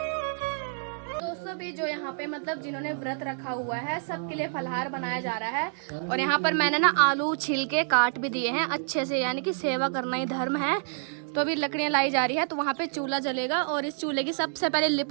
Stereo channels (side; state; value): left; silent; digital silence